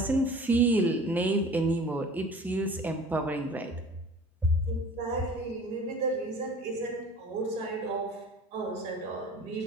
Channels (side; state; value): both; normal; correlation 0.44